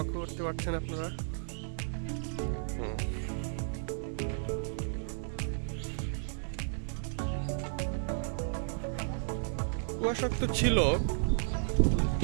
করতে পারছেন আপনারা। কুয়াশাক্ত ছিল,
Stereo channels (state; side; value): silent; left; digital silence